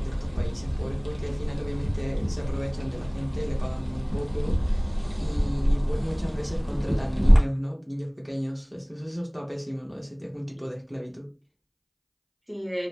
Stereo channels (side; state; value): both; identical; correlation 1.00